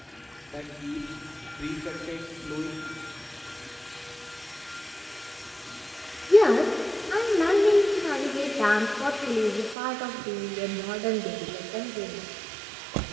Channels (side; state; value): left; drops out; at 9.8 s